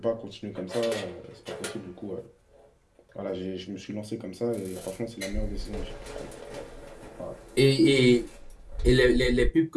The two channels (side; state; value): both; identical; correlation 1.00